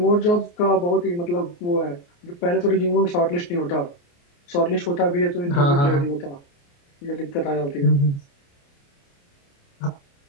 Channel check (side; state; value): right; late; 29 ms